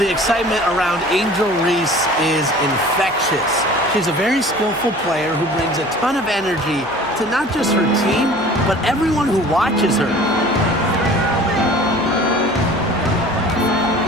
excitement around Angel Reese is infectious. She's a very skillful player who brings a ton of energy to not just her team, but everyone who watches her.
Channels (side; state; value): left; noise; hum, 26 dB below the sound